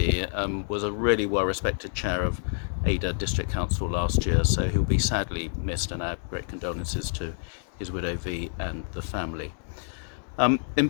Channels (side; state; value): right; silent; digital silence